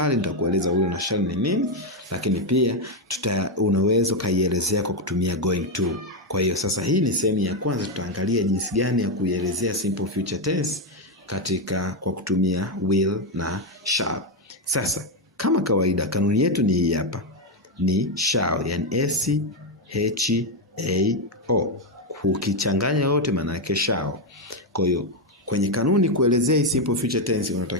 nitakueleza will na shall ni nini, lakini pia unaweza kaielezea kwa kutumia going to. Kwa hiyo sasa hii ni sehemu ya kwanza, tutaangalia jinsi gani ya kuielezea simple future tense kwa kutumia will na shall. Sasa kama kawaida kanuni yetu ni hii hapa. Ni shall, yani SHAO. Ukichanganya yote maana yake shall. Kwa hiyo kwenye kanuni kuelezea simple future tense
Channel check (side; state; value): both; normal; correlation 0.05